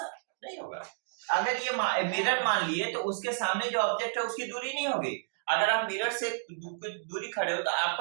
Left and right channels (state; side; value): silent; left; digital silence